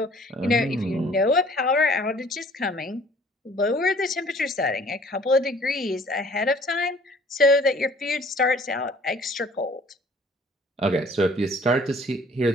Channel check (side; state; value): both; normal; correlation 0.54